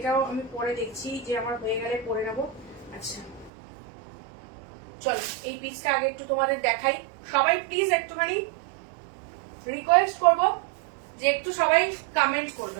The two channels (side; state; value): left; drops out; at 3.5 s